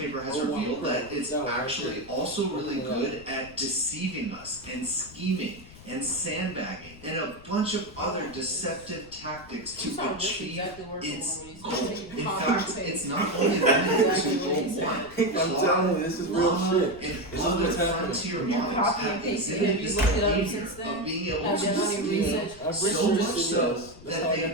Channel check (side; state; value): left; noise; rumble, 19 dB below the sound